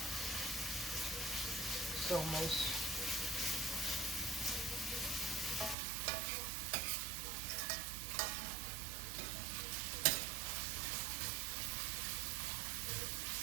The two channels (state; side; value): drops out; left; at 5.8 s